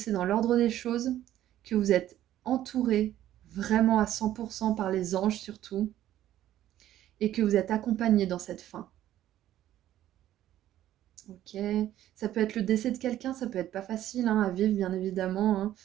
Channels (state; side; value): quieter; left; 12.8 dB